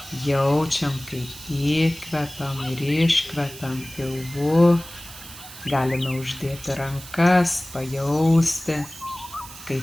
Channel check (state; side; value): noise; right; hiss, 15 dB below the sound